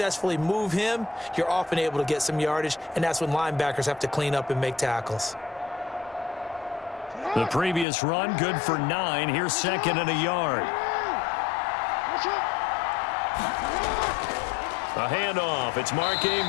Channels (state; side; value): drops out; right; at 7.9 s